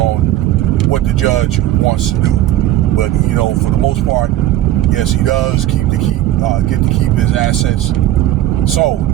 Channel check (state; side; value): quieter; left; 13.8 dB